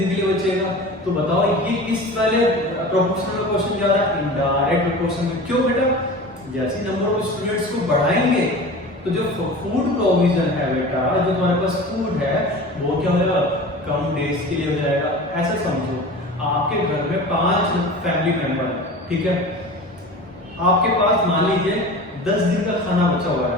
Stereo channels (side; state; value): both; normal; correlation 0.35